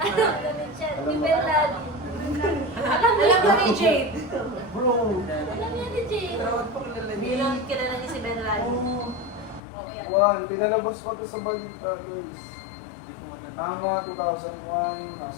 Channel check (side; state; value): right; drops out; at 9.6 s